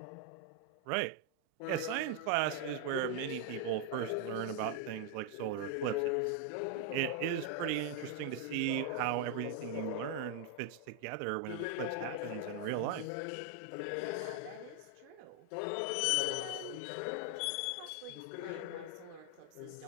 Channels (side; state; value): both; different; correlation 0.00